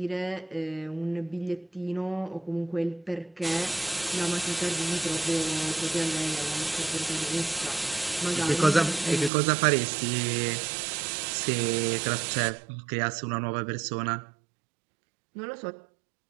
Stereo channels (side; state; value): left; drops out; at 9.3 s